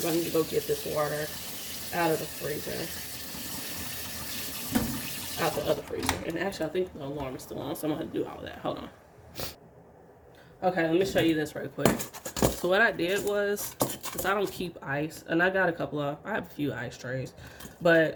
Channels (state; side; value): identical; both; correlation 1.00